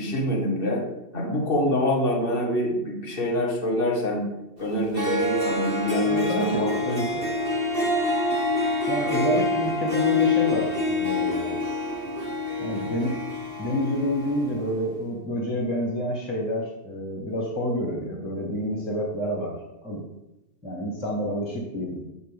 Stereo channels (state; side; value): late; left; 2.7 ms